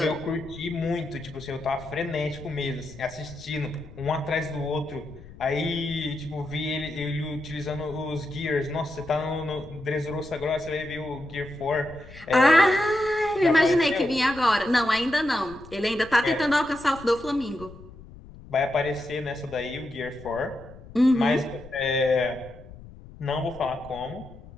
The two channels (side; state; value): left; noise; rumble, 18 dB below the sound